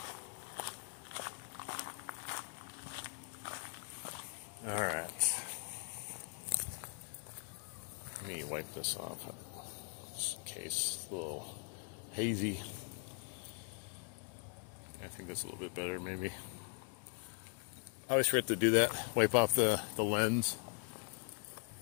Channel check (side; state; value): right; quieter; 38.7 dB